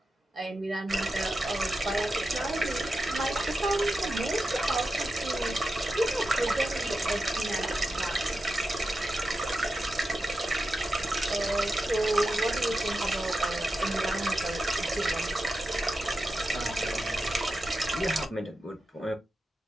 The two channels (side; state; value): both; normal; correlation 0.90